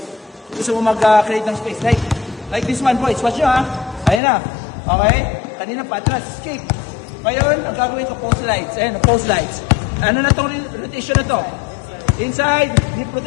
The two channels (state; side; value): drops out; right; at 4.2 s